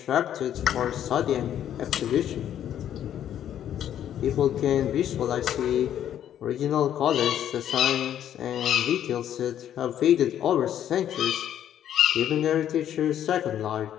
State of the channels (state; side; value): quieter; right; 10.5 dB